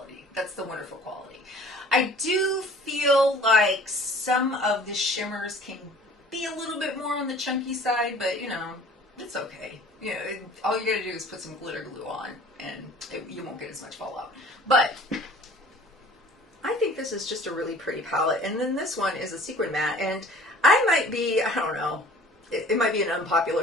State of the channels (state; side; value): normal; both; correlation 0.49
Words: That's the wonderful quality. I do feel like some of the shimmers can be a little bit more on the chunky side, but you know, it's okay. You know, all you gotta do is put some glitter glue on and you won't get as much fallout. But I think this is just a really pretty palette. And then this one is a sequin matte, and I might be, I don't know, it might be an